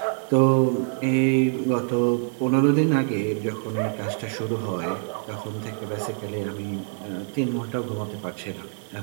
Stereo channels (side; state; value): left; silent; digital silence